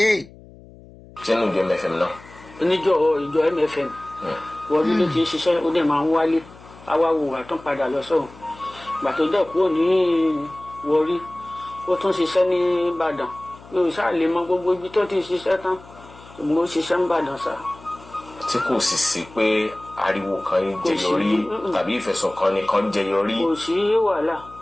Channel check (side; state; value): left; noise; hum, 21 dB below the sound